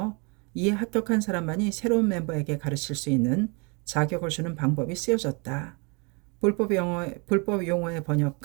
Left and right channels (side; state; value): left; quieter; 32.1 dB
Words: 이에 합격한 사람만이 새로운 멤버에게 가르칠 수 있는 자격을 주는 방법이 쓰여졌다. 불법 용어의